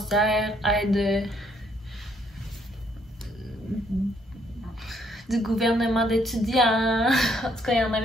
aide du gouvernement d'étudiants. En tout cas, il y en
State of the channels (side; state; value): both; normal; correlation 0.69